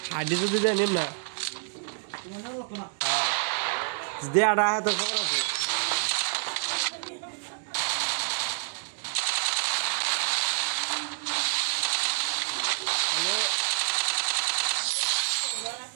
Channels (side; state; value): left; silent; 59 dB below the other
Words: হাড্ডি তো দিলে নিম না দে আড়া হ্যাঁ তো খবর আছে